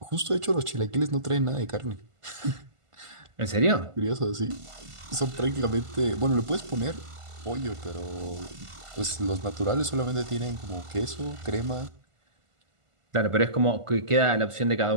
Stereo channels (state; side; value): late; left; 1.5 ms